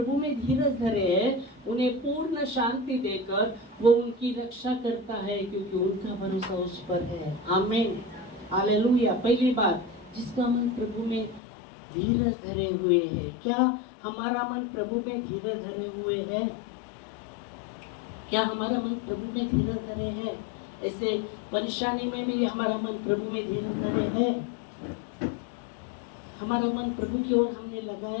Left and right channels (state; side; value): drops out; right; at 11.4 s